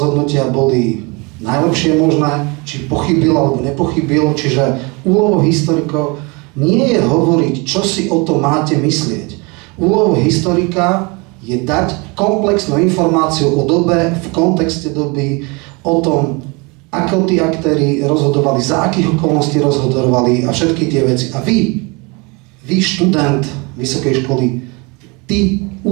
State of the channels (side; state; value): left; quieter; 28.5 dB